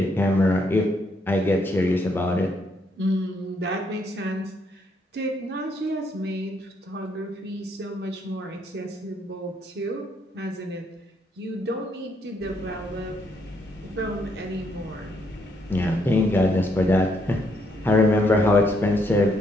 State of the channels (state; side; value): normal; both; correlation 0.73